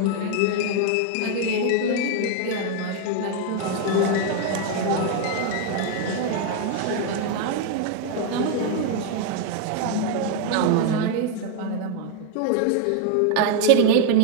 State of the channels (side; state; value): both; different; correlation 0.00